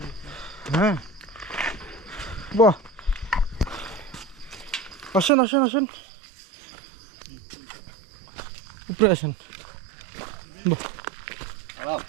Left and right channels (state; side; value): drops out; left; at 5.3 s